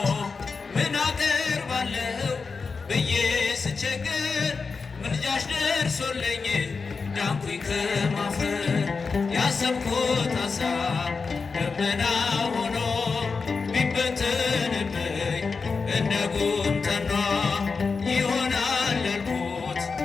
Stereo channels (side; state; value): right; quieter; 4.7 dB